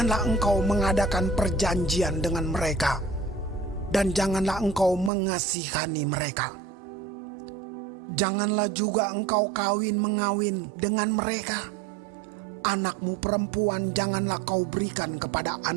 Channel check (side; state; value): left; drops out; at 5.1 s